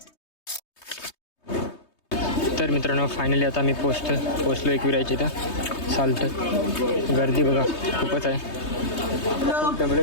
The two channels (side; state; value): right; late; 3.2 ms